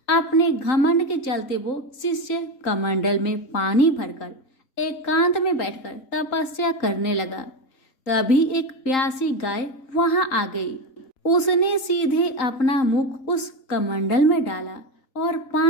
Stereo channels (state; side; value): late; right; 3.9 ms